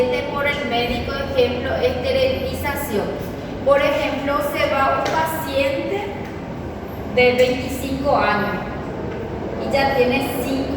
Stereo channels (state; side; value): identical; both; correlation 1.00